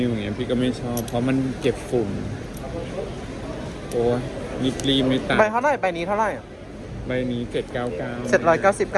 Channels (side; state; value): both; identical; correlation 1.00